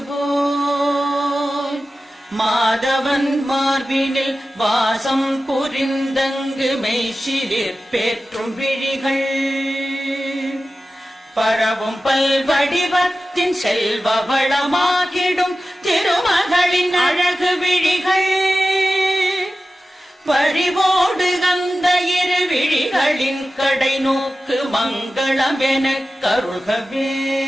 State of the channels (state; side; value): normal; both; correlation 0.94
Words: போல் மாதவன் மார்பினில் வாசம் புரிந்தங்கு மெய்சிலிற் பேற்றும் விழிகள் பரவும் பல்வடிவத்தின் செல்வ வளமாகிடும் திருமகளின் அழகு விழிகள் பறிவோடு அந்த இரு விழிகளின் கடை நோக்கு மங்களம் எனக் கருள்கவே.